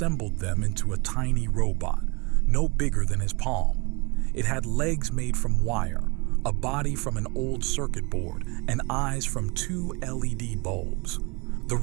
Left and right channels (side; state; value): left; quieter; 28.8 dB